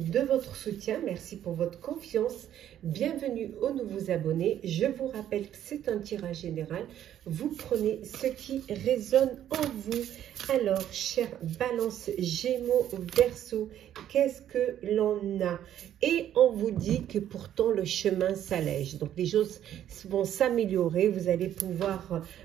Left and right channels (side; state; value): left; quieter; 11.0 dB